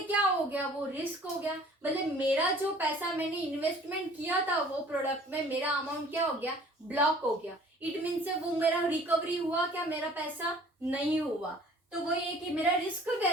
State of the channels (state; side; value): normal; both; correlation 0.51